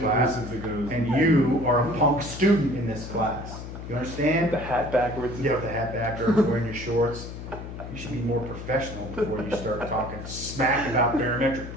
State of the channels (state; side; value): noise; left; hum, 10 dB below the sound